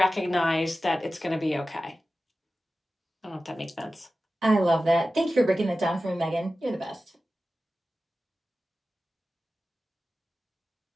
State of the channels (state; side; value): normal; both; correlation 0.95